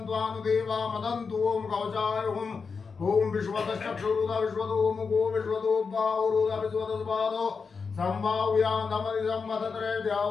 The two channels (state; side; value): quieter; right; 5.2 dB